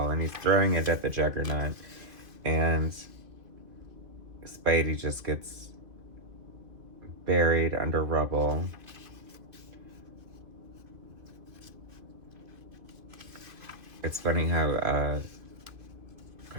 and he's throwing it at the Juggernaut. And Spidey just gets buried under rubble. It's funny how,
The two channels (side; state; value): left; late; 2.6 ms